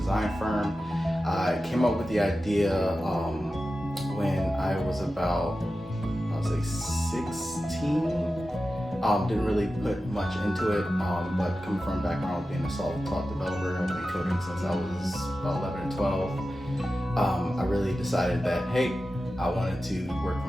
firm. I came up with the idea when I was about, 16. Didn't really put much into it, but coming from a background of being a self-taught developer, I've been coding since I was about 11 and 12. I really decided that, hey, I wanted to work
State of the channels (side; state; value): both; normal; correlation 0.93